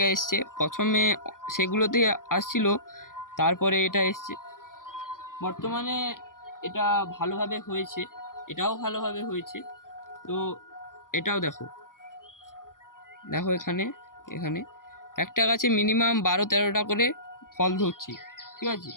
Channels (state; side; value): late; right; 0.90 ms